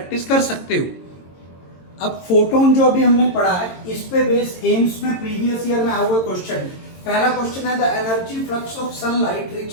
कर सकते हो। अब फोटोन जो अभी हमने पढ़ा है, इस पे बेस एम्स में प्रीवियस ईयर में आया हुआ क्वेश्चन। पहला क्वेश्चन है the energy flux of sunlight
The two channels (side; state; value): right; late; 22 ms